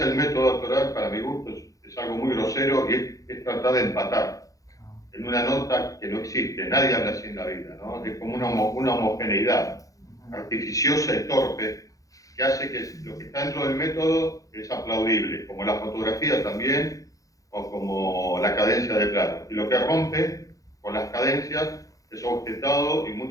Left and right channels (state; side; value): late; right; 0.17 ms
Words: el método actoral, para mi gusto, es algo muy grosero y es tratar de empatar en una nota que no existe. Nadie habla así en la vida, ¿no? Es como una homogeneidad artificiosa y torpe que hace que lo que está dentro del método es aplaudible, como la fotografía también, o como la cadencia de plano. Y lo que rompe con las cadencias es objetado, y